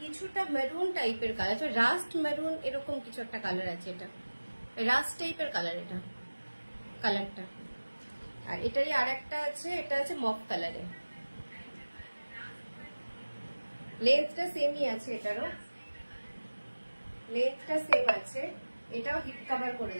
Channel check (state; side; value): inverted; both; correlation -1.00